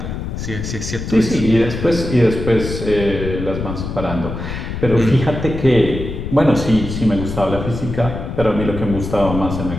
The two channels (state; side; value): noise; left; rumble, 6 dB below the sound